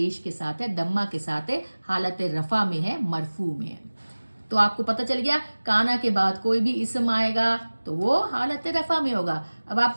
کے ساتھ ہے, دمہ کے ساتھ ہے, حالت رفع میں ہے, مرفوع میں ہے. تو آپ کو پتہ چل گیا کانا کے بعد کوئی بھی اسم آئے گا تو وہ حالت رفع میں ہوگا. اب آپ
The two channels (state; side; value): inverted; both; correlation -1.00